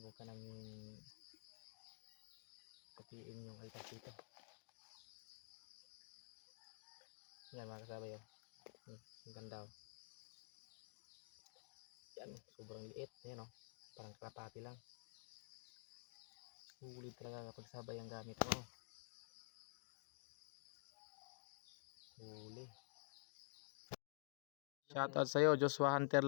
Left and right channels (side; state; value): right; silent; digital silence